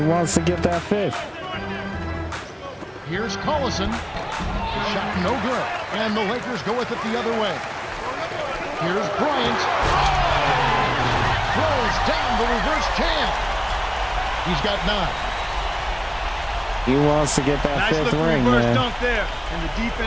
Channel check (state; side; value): identical; both; correlation 1.00